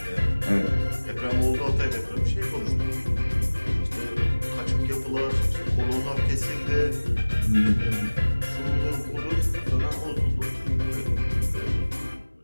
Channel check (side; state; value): both; inverted; correlation -1.00